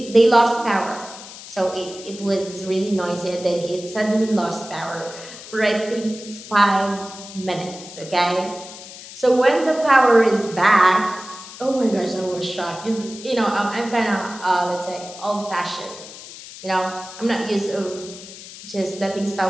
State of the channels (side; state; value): left; noise; hiss, 15 dB below the sound